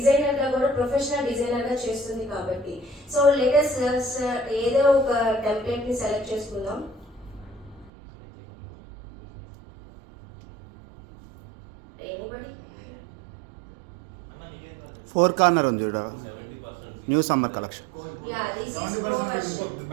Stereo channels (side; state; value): left; drops out; at 7.9 s